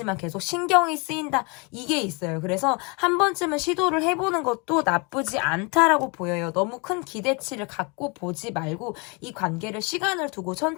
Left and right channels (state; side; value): quieter; right; 30.7 dB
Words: 계속 신경이 쓰인다. 이게 있어요. 그래서 한 번쯤은 시도를 해보는 것도 나쁘지 않다라고 보여요. 너무 큰 기대치를 갖고 보지 말고 이 관계를 시간을 두고